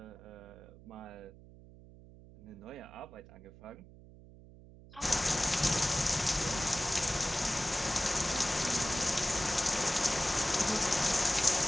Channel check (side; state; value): right; noise; hum, 20 dB below the sound